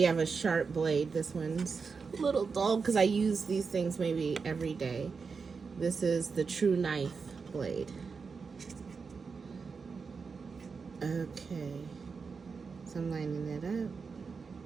have a sharp blade. This one's a little dull because I use these things maybe every day. This is the True Knife blade. Okay. So I'm lining it up.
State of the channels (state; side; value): quieter; left; 5.1 dB